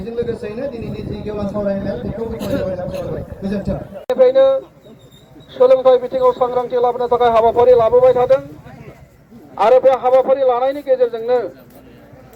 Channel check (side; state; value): both; identical; correlation 1.00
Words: लोगोसेनो दिनैनि जि गेवलां सावरायनाय बेखौ गोजोन्थों निफ्रायनो सोलोंथाइ बिथिङाव सांग्रांथि लाबोनो थाखाय हाबाफारि लाबोबाय थादों आरो बे हाबाफारि लानायनि गेजेरजोंनो